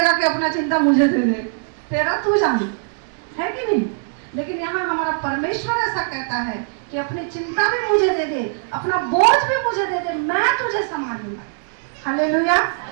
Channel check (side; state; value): left; silent; digital silence